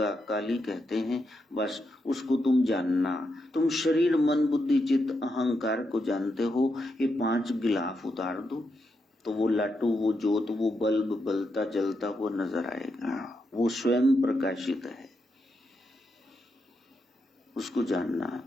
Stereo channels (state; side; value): normal; both; correlation 0.83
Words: काली कहते हैं। बस उसको तुम जानना। तुम शरीर, मन, बुद्धि, चित्त, अहंकार को जानते हो। ये 5 गिलाफ उतार दो तो वो लाटू, वो जोत, वो बल्ब बलता जलता हुआ नजर आएगा। वो स्वयं प्रकाशित है, उसको जानना।